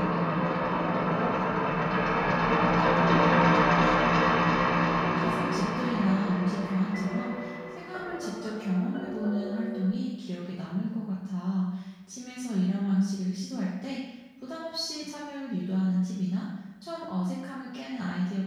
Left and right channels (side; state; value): both; identical; correlation 1.00